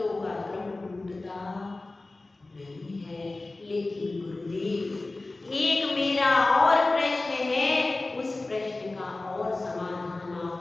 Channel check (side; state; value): right; quieter; 3.1 dB